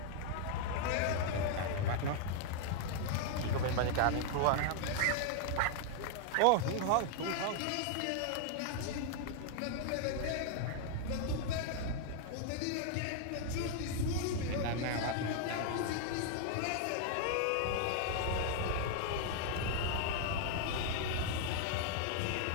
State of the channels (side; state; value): both; different; correlation 0.00